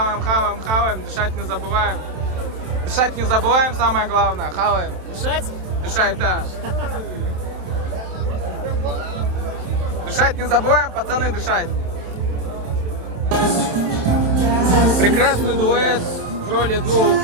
дышать не забываем. Дышать не забываем, самое главное. Хаваем. Дышать? Дышать, да. Дышать не забываем, пацаны, дышать. Прекрасный дуэт в роли 2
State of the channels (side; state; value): left; late; 27 ms